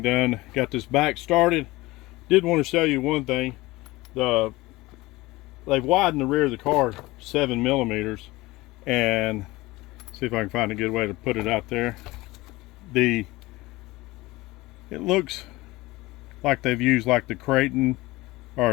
done. Got this back started. Did want to show you one thing. They've widened the rear of the car 7 millimeters, and see if I can find a good way to put it out there. It looks like they've used like the Creighton or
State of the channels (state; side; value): quieter; right; 20.4 dB